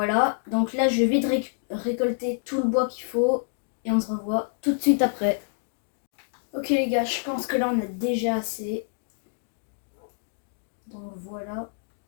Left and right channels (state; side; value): silent; right; digital silence